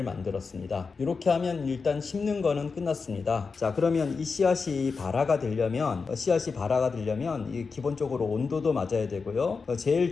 만들었습니다. 이렇게 하면 일단 심는 거는 끝났습니다. 자, 그러면 이 씨앗이 발화가 되려면 이 기본적으로 온도도 맞아야 되고요. 제일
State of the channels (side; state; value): right; quieter; 4.8 dB